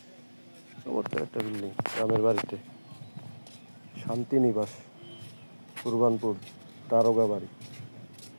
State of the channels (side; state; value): both; inverted; correlation -1.00